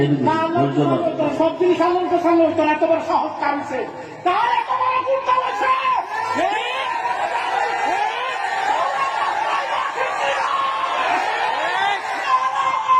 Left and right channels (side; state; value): both; identical; correlation 1.00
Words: দিন, ধৈর্য ধরুন। সব জিনিস আনন্দ সামনে হইতো না, এতবার সাহস কামছে, তার এতবার গুরুত্ব হয়েছে।